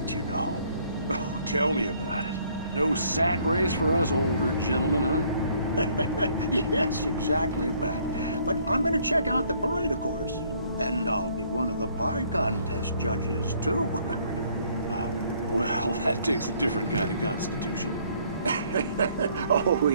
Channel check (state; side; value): inverted; both; correlation -0.63